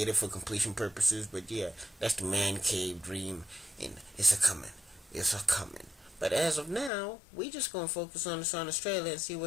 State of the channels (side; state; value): right; drops out; at 6.9 s